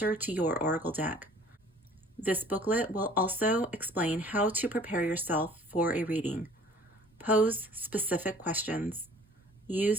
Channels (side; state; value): both; normal; correlation 0.52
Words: to your oracle deck. This booklet will also explain how to prepare yourself for a reading, pose specific questions,